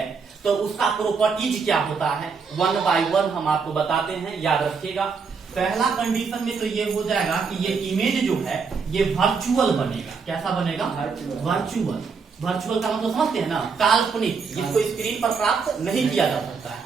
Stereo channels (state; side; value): quieter; left; 5.4 dB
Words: तो उसका प्रॉपर्टीज क्या होता है, 1 by 1 हम आपको बताते हैं, याद रखिएगा। पहला कंडीशन में तो ये हो जाएगा कि ये इमेज जो है ये वर्चुअल बनेगा। कैसा बनेगा, वर्चुअल। वर्चुअल का मतलब समझते हैं ना, काल्पनिक, जिसको स्क्रीन पर प्राप्त नहीं किया जा सकता है।